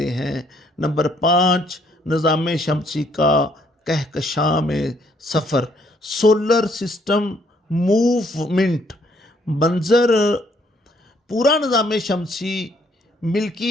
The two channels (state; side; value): normal; both; correlation 0.67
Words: ہیں۔ نمبر 5، نظام شمسی کا کہکشاں میں سفر، سولر سسٹم موومنٹ منظر۔ پورا نظام شمسی